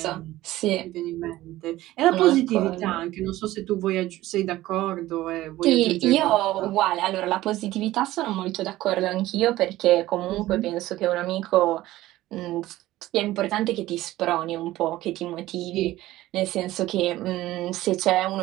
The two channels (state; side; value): quieter; left; 16.1 dB